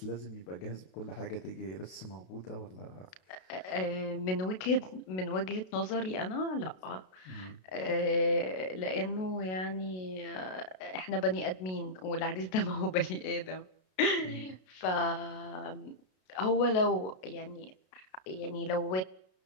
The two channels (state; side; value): late; right; 32 ms